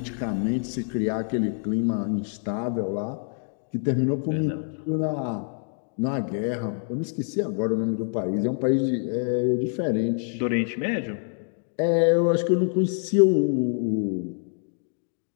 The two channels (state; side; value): silent; right; 61 dB below the other